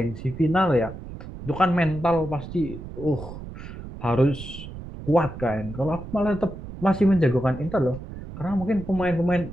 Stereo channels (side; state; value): right; noise; rumble, 12 dB below the sound